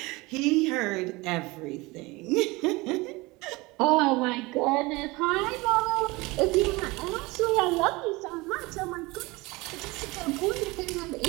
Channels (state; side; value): quieter; left; 23.0 dB